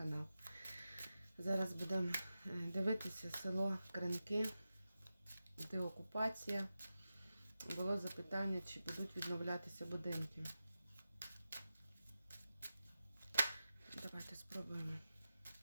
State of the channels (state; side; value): inverted; both; correlation -0.92